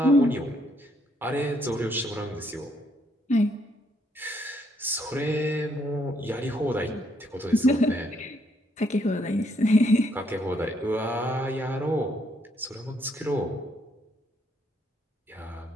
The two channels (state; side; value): normal; both; correlation 0.71